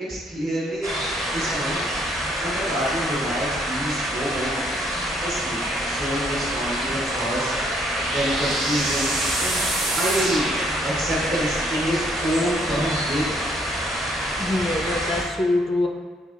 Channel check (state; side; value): normal; both; correlation 0.67